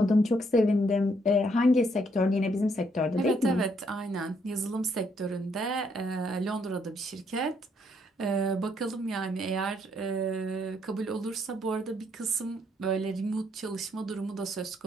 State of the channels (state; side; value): normal; both; correlation 0.72